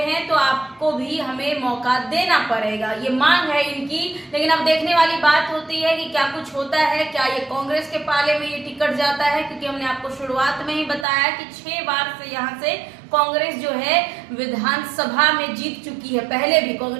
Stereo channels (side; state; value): left; drops out; at 11.1 s